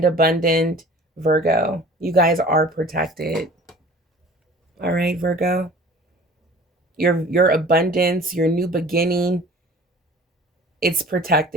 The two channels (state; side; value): normal; both; correlation 0.46